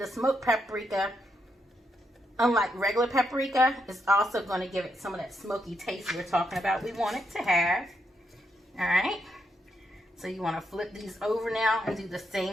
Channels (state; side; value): normal; both; correlation 0.80